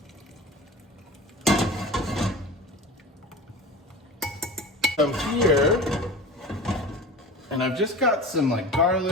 Come here, and I've just got some like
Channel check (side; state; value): both; normal; correlation 0.35